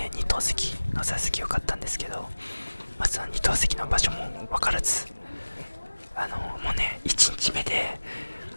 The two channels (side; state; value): both; inverted; correlation -1.00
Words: 2等席の座席よかったんですけど、その2等席の場所も分からず、もうね1日目で